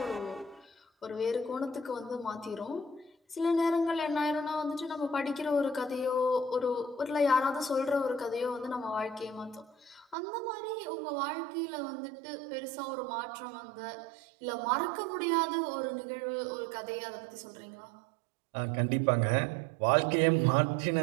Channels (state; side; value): drops out; left; at 10.2 s